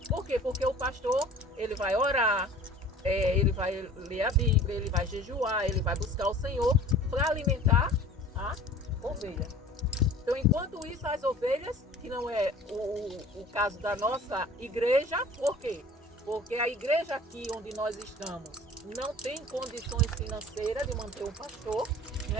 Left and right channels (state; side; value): normal; both; correlation 0.45